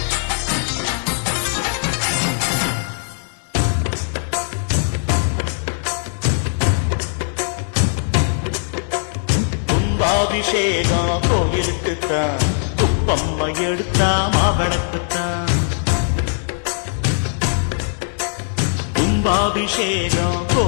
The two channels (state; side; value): silent; right; 59 dB below the other